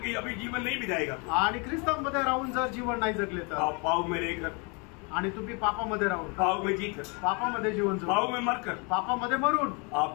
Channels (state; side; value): quieter; right; 32.6 dB